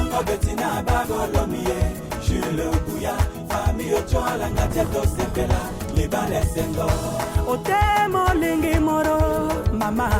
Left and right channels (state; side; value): identical; both; correlation 1.00